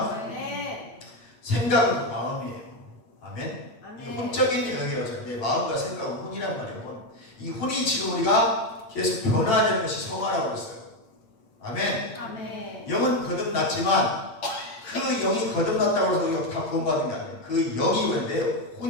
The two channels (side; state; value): right; late; 8.9 ms